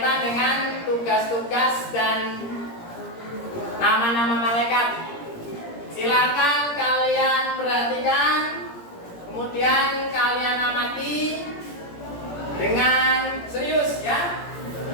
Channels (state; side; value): late; right; 17 ms